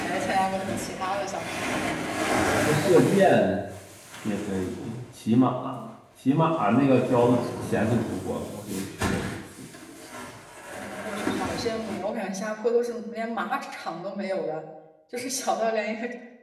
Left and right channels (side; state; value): both; identical; correlation 1.00